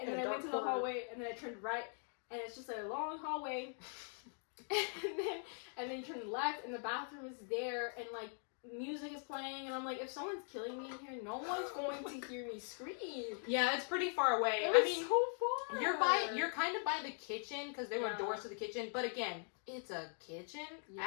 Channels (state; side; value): silent; right; 50 dB below the other